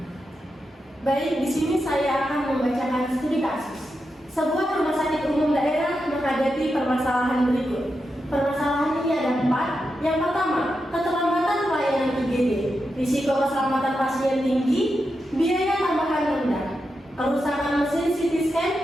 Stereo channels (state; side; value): normal; both; correlation 0.87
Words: Baik, di sini saya akan membacakan studi kasus. Sebuah rumah sakit umum daerah menghadapi permasalahan berikut. Permasalahan ini ada 4. Yang pertama, keterlambatan pelayanan IGD, risiko keselamatan pasien tinggi, biaya tambahan rendah, kerusakan mesin CT scan,